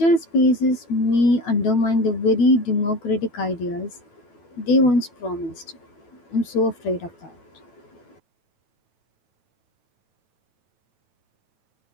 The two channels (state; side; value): late; right; 9.1 ms